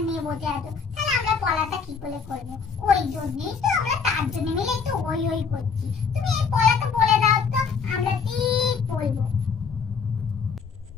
নিয়ে বসে আছো, তাহলে আমরা পড়াটা কি করে করবো? ওই জন্যই তো আমরা তার জন্য মিলে একটু ওই ওই করছি। তুমি এই পড়াটা বলে দাও তো, আমরা ঠিক বলবো।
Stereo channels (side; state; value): right; quieter; 5.8 dB